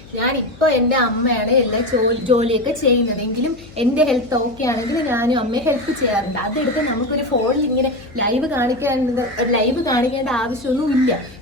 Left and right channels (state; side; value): noise; left; hum, 21 dB below the sound